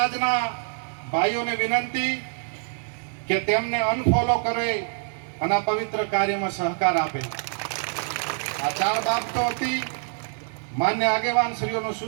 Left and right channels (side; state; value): left; silent; 57 dB below the other